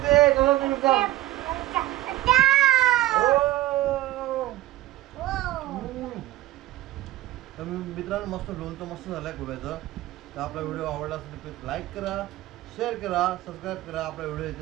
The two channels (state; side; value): quieter; left; 15.9 dB